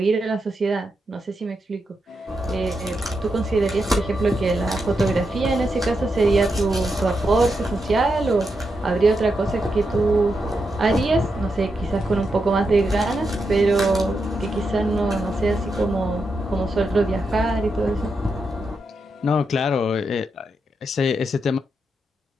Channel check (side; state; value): both; normal; correlation 0.85